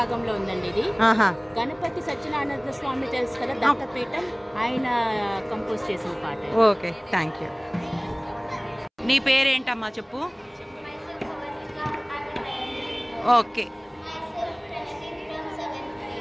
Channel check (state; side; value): identical; both; correlation 1.00